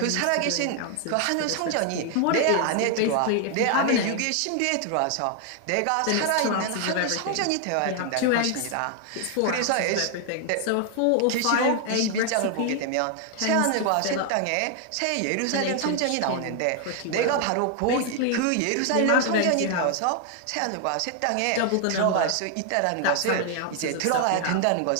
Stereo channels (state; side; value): different; both; correlation 0.00